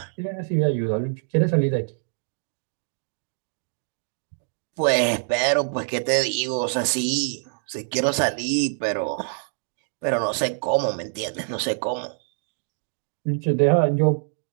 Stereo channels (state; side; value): silent; left; 62 dB below the other